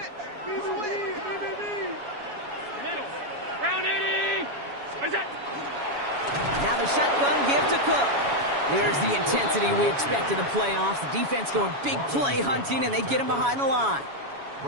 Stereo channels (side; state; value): left; late; 7.2 ms